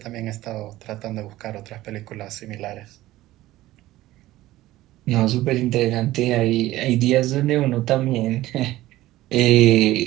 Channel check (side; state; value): left; quieter; 16.3 dB